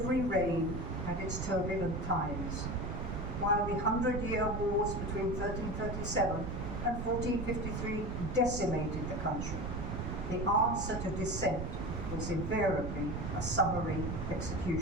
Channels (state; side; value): noise; right; rumble, 3 dB below the sound